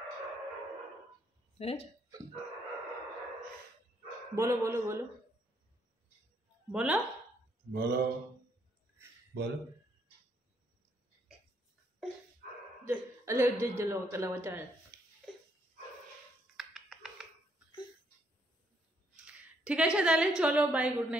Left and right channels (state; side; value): normal; both; correlation 0.71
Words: বলো বলো বলো বলো বলো বলো। ঠিক আছে তাহলে চলো বাই, গুড